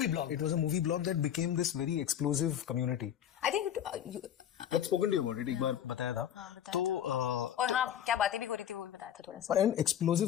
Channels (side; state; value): right; quieter; 10.0 dB